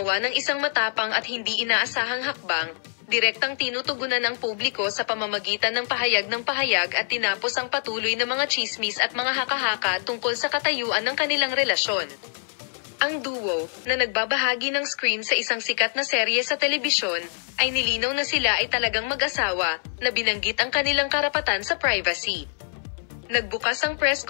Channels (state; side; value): silent; right; digital silence